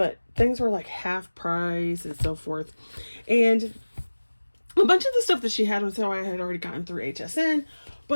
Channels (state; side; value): inverted; both; correlation -1.00